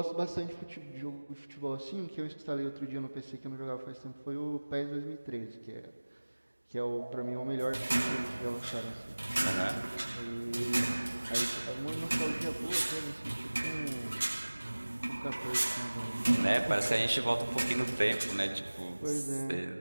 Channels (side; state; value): both; inverted; correlation -1.00